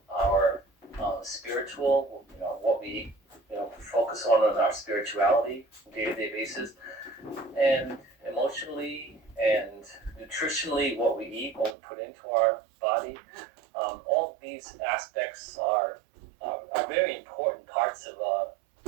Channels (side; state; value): left; drops out; at 11.8 s